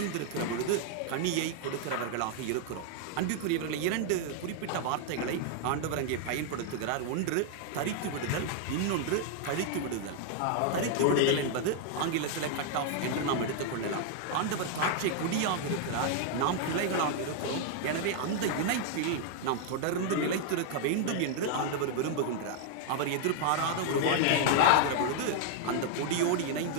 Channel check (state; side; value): different; both; correlation 0.00